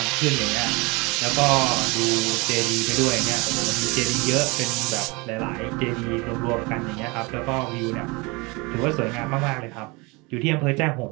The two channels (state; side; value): quieter; left; 26.3 dB